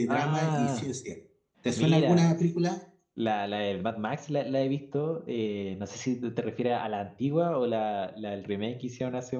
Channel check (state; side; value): identical; both; correlation 1.00